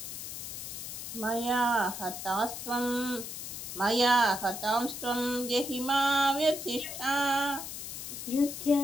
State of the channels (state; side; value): noise; left; hiss, 7 dB below the sound